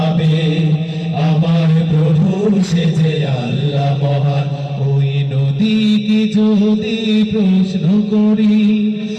আমার প্রভু সে যে আল্লাহ মহান। ওই নদীকে যদি প্রশ্ন করি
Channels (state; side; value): identical; both; correlation 1.00